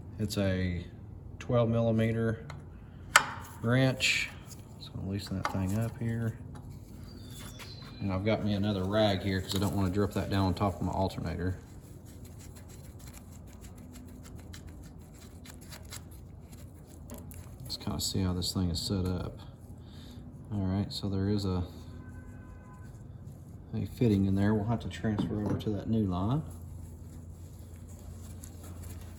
It's a 12 millimeter wrench. Just gonna loosen that thing up here. And I've got me another rag here because I don't want to drip that down on top of my alternator. Let's kind of see how this thing is set up. All right, so there is a fitting in there. We'll have to transfer over to that new line.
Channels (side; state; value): both; identical; correlation 1.00